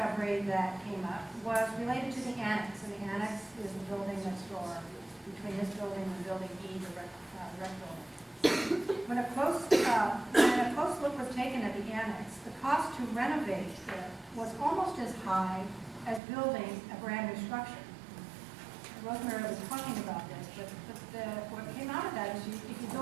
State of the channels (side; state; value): left; drops out; at 16.2 s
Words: that came up was related to the annex, and the annex is the building next door between this building and building E, the rec building. When a close look was taken at the annex, the cost to renovate it was almost as high as building a brand new structure. Rosemary was talking about this, but what came out of that is if you